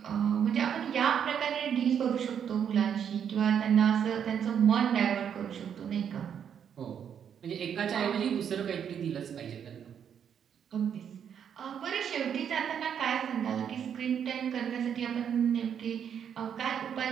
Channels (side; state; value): left; quieter; 8.3 dB